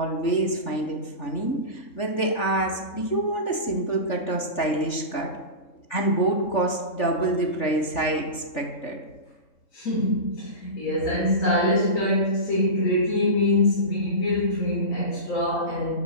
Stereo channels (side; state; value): right; late; 3.4 ms